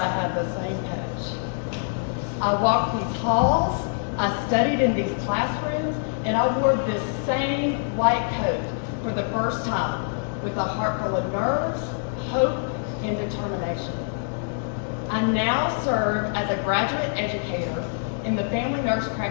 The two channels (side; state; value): right; silent; digital silence